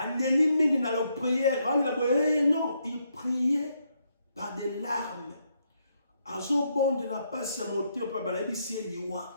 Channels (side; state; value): both; inverted; correlation -0.77